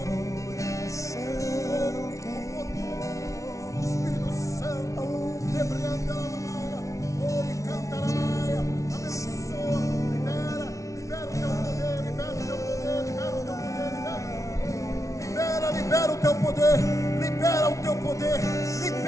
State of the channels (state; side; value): late; right; 0.15 ms